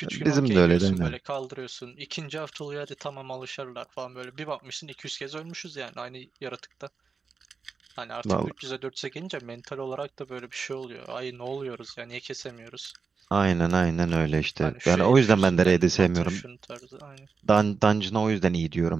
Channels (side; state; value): left; quieter; 5.1 dB